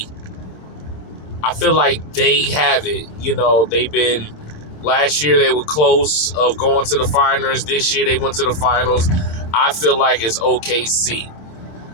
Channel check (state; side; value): late; right; 26 ms